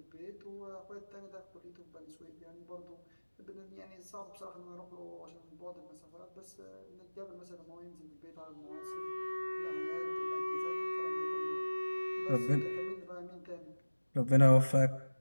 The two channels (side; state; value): both; inverted; correlation -1.00